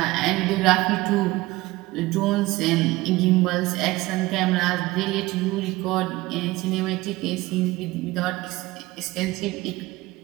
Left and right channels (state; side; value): quieter; left; 19.5 dB